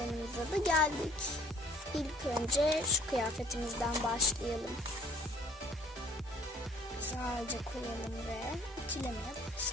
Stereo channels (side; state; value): both; normal; correlation 0.55